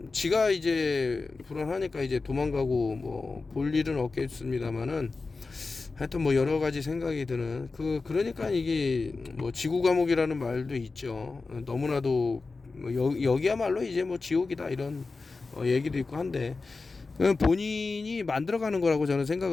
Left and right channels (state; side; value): quieter; right; 3.9 dB